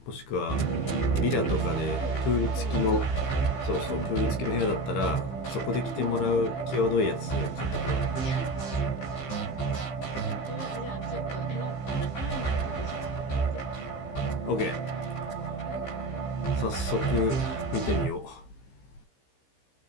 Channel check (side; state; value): right; late; 15 ms